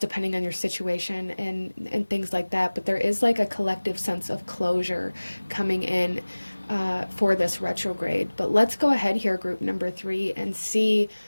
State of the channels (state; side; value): inverted; both; correlation -1.00